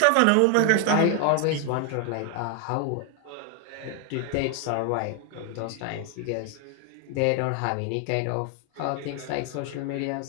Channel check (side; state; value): both; different; correlation 0.00